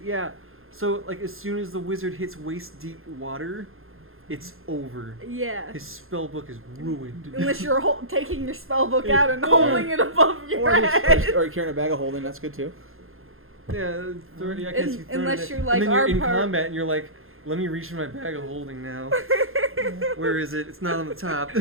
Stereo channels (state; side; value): late; left; 0.61 ms